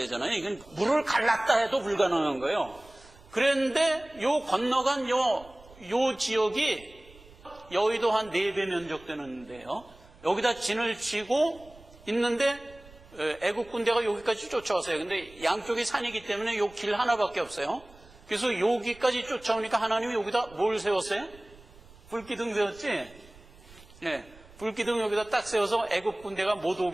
이건 물을 갈랐다 해도 불가능한 거예요. 그런데 요 건너간 요 지역이 여의도 한 4배 면적 되는데요. 여기다 진을 치고 있는데 애국 군대가 여기까지 쫓아왔어요. 근데 양쪽이 산이기 때문에 요 길 하나밖에 없어요. 그래서 여기까지 쫓아오니까 하나님이 여기다 뭘 세웠어요? 불기둥 세웠지? 네, 불기둥 여기다 딱 세워서 애국 군대가 못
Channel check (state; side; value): noise; right; rumble, 23 dB below the sound